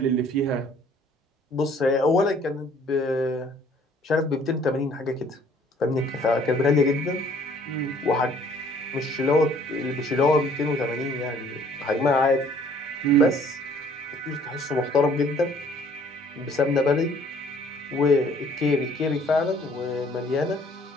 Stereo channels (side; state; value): both; normal; correlation 0.58